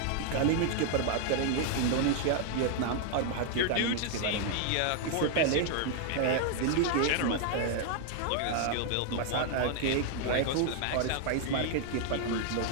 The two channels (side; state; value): both; different; correlation 0.00